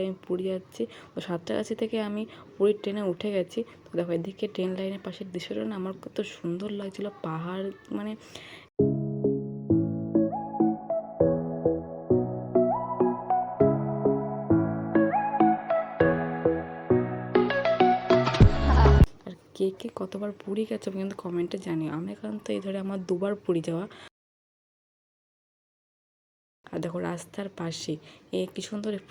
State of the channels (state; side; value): identical; both; correlation 1.00